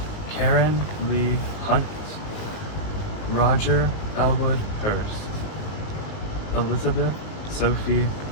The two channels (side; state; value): right; late; 19 ms